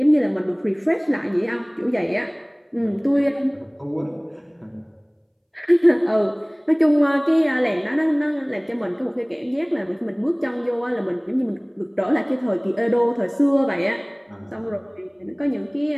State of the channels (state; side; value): identical; both; correlation 1.00